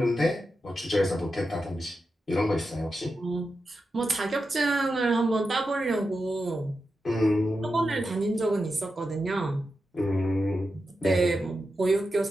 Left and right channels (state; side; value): normal; both; correlation 0.89